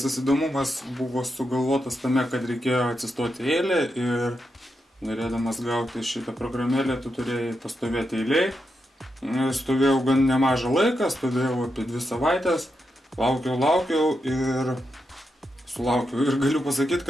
įdomumas buvo sugalvotas tame, kad reikėjo atsistoti eilę ir norėdamas gauti šitą programėlę, tu turėjai pastovėti eilėj. Stovėjau gan nemažą laiką, stovėjau apie 2 savaitės, laukiau ir sulaukiau. Ir galiu pasakyti,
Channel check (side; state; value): both; normal; correlation 0.85